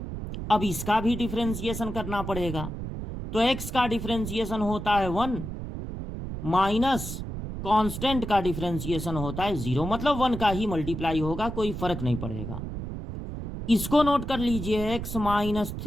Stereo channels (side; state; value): right; noise; rumble, 7 dB below the sound